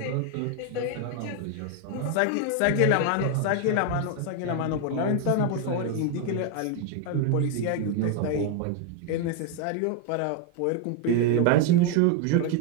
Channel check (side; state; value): both; different; correlation 0.01